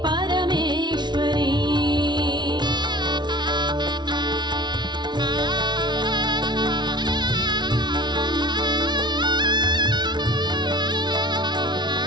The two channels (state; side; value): late; left; 0.21 ms